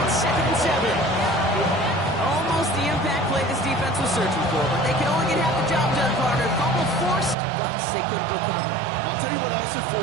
Searching for, but they can only get half the job done, partner. Fumble forced, but they couldn't recover. I'll tell you what else it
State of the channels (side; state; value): left; drops out; at 7.4 s